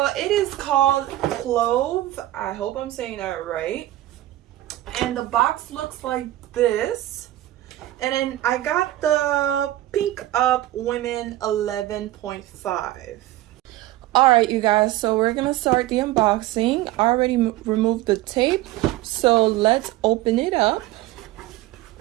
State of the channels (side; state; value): left; quieter; 15.4 dB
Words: it is called Cloves. I hope I'm saying that right. And the box looks like this. And then I got the Pink Up Women 11.5. All right, you guys, so we're gonna start the unboxing. I already removed the tape, so let's open it up.